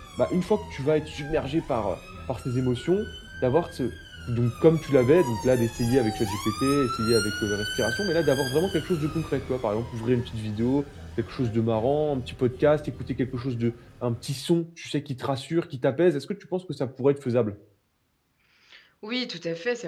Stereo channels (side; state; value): both; identical; correlation 1.00